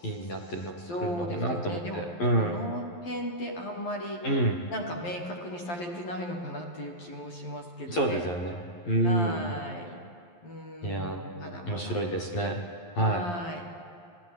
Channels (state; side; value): late; right; 11 ms